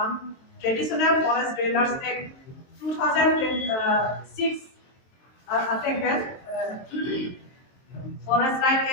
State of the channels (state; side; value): late; right; 23 ms